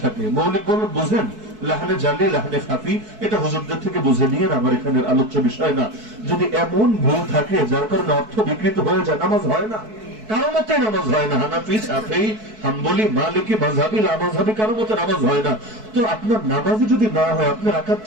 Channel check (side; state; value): left; late; 4.6 ms